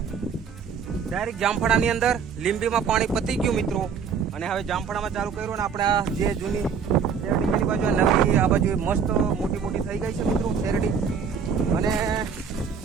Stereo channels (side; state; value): left; quieter; 6.5 dB